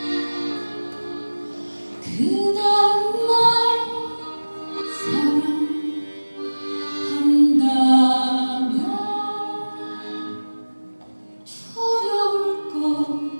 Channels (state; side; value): inverted; both; correlation -1.00